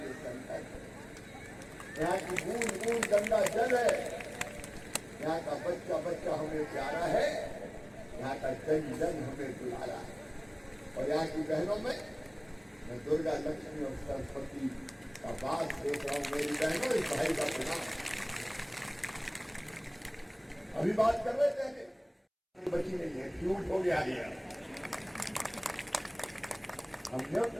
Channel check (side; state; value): both; identical; correlation 1.00